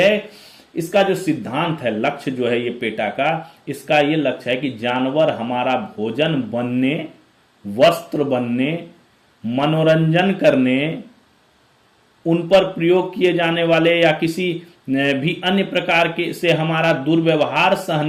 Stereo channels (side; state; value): both; identical; correlation 1.00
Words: इसका जो सिद्धांत है, लक्ष्य जो है ये पेटा का, इसका ये लक्ष्य है कि जानवर हमारा भोजन बनने, वस्त्र बनने, मनोरंजन करने, उन पर प्रयोग किए जाने वाले या किसी भी अन्य प्रकार के से हमारा दुर्व्यवहार